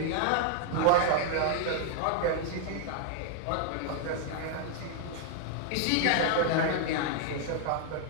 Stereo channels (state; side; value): different; both; correlation 0.00